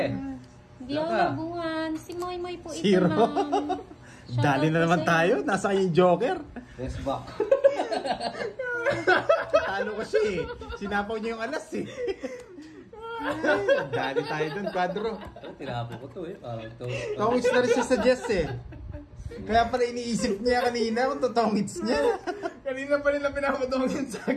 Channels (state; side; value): identical; both; correlation 1.00